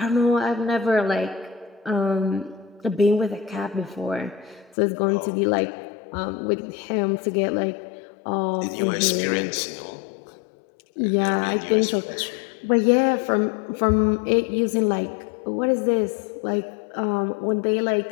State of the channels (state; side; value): drops out; right; at 4.8 s